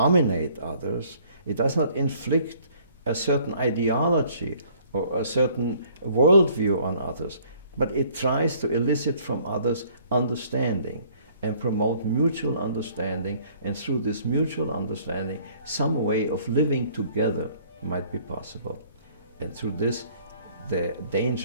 others, it does not inflict a certain ideology or a certain worldview on others, but it tries to elicit from others understanding and promote mutual understanding, and through this mutual understanding, some way of living together might be possible. And through this, the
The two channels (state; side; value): inverted; both; correlation -0.58